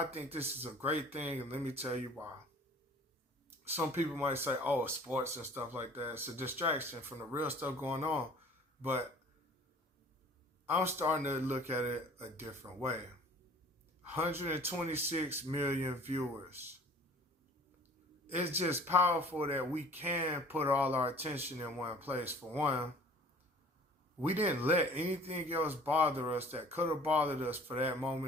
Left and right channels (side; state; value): both; normal; correlation 0.48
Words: think this is a great thing, and let me tell you why. Some people might say, oh, sports and stuff like that, it's a distraction from the real stuff going on. But I'm starting to look at it a different way. 126 million viewers. It's just powerful that we can put all our attention in one place. For one, we didn't let anything else bother us that could have bothered us for that